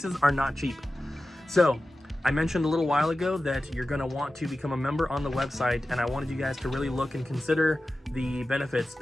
are not cheap. So I mentioned a little while ago that you're going to want to become a member on the website, and I wanted you guys to really look and consider the benefits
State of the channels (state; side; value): normal; both; correlation 0.94